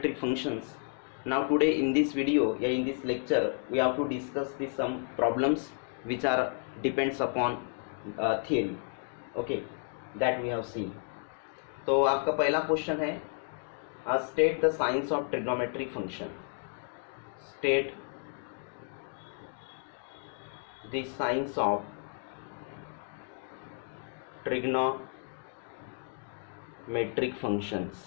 functions. Now today in this video, in this lecture, we have to discuss some problems which are depends upon theory. Okay, that we have seen. तो आपका पहला question है state the signs of trigonometric function. State the signs of trigonometric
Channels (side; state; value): right; silent; 56 dB below the other